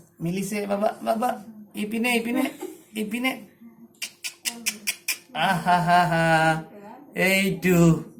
মিলিছে বাবা বাবা ইপিনে ইপিনে ইপিনে আহা হা হা এইটো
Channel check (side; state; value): both; identical; correlation 1.00